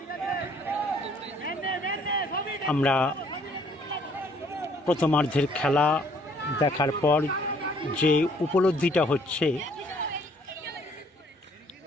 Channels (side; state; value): both; normal; correlation 0.62